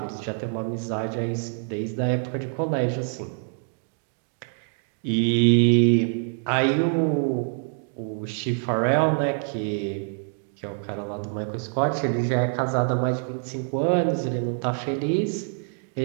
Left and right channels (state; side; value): silent; left; 60 dB below the other